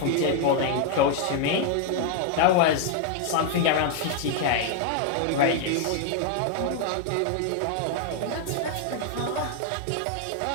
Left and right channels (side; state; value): both; different; correlation 0.00